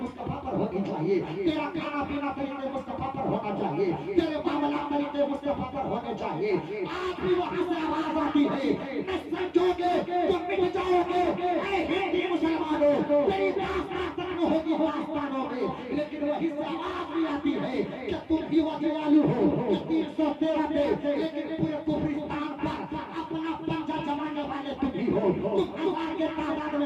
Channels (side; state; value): both; identical; correlation 1.00